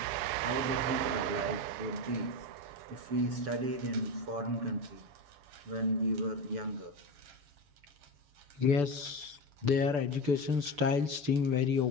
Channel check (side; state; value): left; late; 6.9 ms